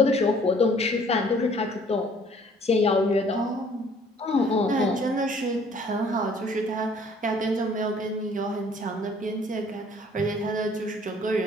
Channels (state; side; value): normal; both; correlation 0.57